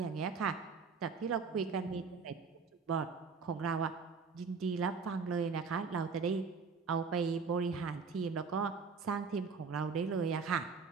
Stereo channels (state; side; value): quieter; left; 5.1 dB